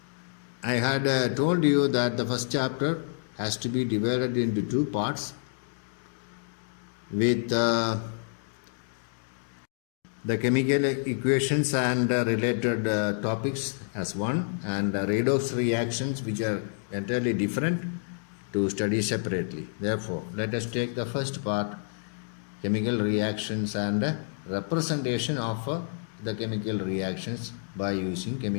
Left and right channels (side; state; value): right; silent; digital silence